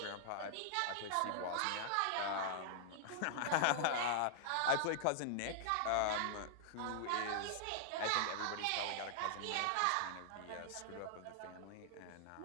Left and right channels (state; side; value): different; both; correlation -0.01